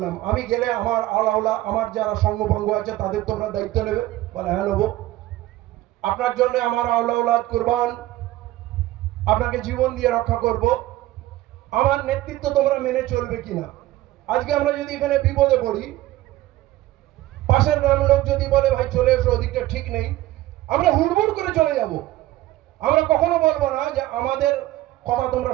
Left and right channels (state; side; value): quieter; left; 16.0 dB